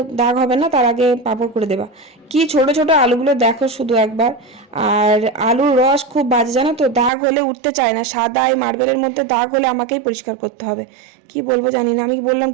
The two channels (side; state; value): left; drops out; at 7.1 s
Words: দাগ হবে না, তার আগে পাঁপড় করে দেবা। কি ছোট ছোট আলুগুলো দেখো শুধু একবার। আর আলুর রস খুব বাজে, জানো তো, দাগ হলে উঠতে চায় না, সাদা এই মার্বেলের মধ্যে দাগ হলে আমাকেই পরিষ্কার করতে হবে। কি বলবো জানি না, আমি বললাম